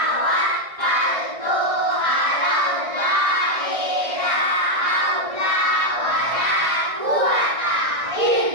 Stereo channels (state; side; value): late; left; 1.6 ms